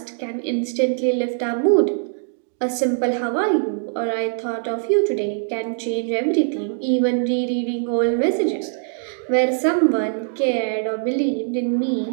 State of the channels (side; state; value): left; silent; digital silence